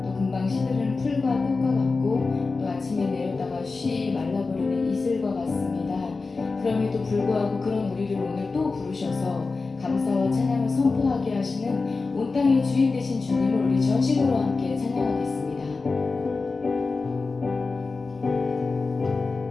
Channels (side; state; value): right; quieter; 4.0 dB